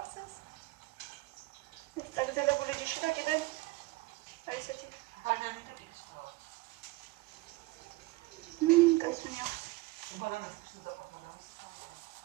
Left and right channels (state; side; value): quieter; left; 21.4 dB